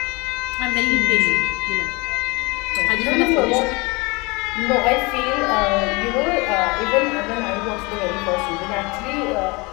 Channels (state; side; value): quieter; right; 26.1 dB